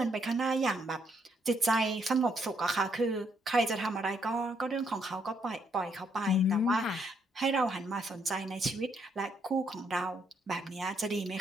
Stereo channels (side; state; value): both; normal; correlation 0.73